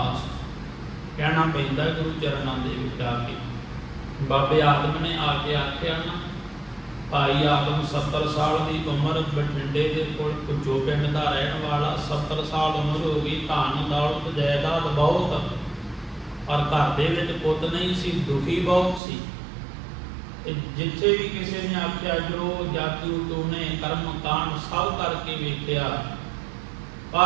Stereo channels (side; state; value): left; drops out; at 19.0 s